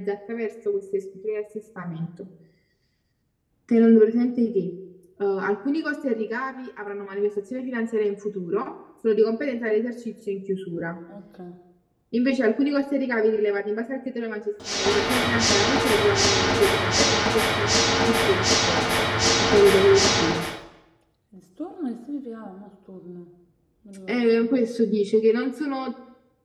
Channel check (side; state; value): both; identical; correlation 1.00